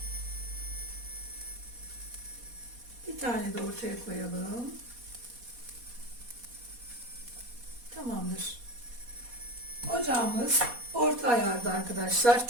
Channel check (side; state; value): left; late; 4.2 ms